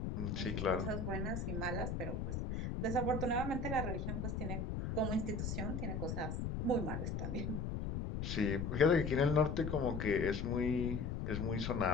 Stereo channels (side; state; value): left; noise; rumble, 2 dB below the sound